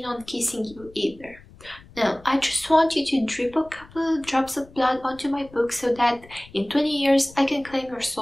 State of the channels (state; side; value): noise; left; rumble, 23 dB below the sound